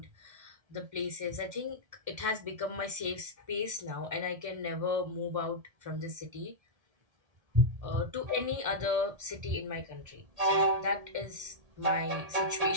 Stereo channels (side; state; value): left; late; 1.7 ms